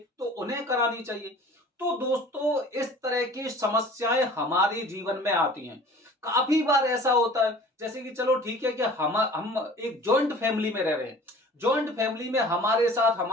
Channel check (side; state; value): both; normal; correlation 0.46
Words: तो उन्हें करानी चाहिए। तो दोस्तों, इस तरह की समस्याएं हमारे जीवन में आती हैं। काफी बार ऐसा होता है, जैसे कि चलो ठीक है कि हम एक जॉइंट फैमिली में रह रहे हैं। जॉइंट फैमिली में हमारे साथ